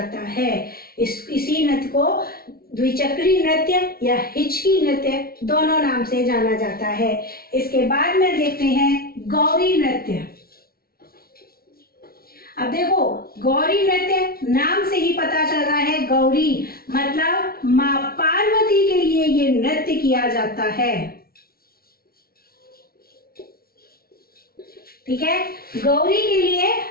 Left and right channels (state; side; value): late; right; 0.44 ms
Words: है। इसी नृत्य को द्विचक्री नृत्य या हिचकी नृत्य दोनों नाम से जाना जाता है। इसके बाद में देखते हैं गौरी नृत्य। अब देखो, गौरी नृत्य नाम से ही पता चल रहा है, गौरी मतलब मां पार्वती के लिए ये नृत्य किया जाता है। ठीक है, गौरी के लिए